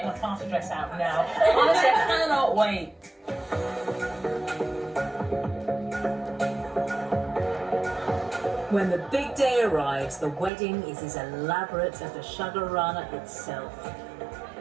my party dress out now. Honestly, I cannot wait. When the big day arrives, the wedding is as elaborate as the Shagarana itself.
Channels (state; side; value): drops out; left; at 10.5 s